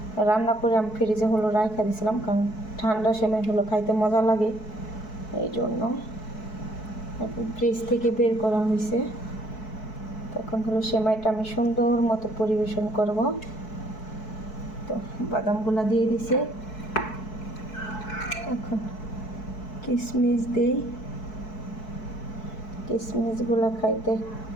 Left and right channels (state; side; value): late; right; 4.6 ms